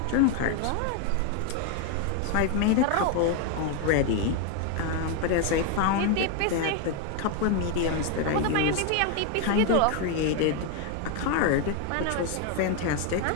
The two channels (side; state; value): both; different; correlation 0.01